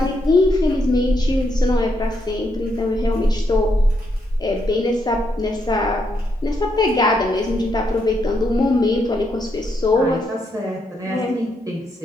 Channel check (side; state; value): both; normal; correlation 0.78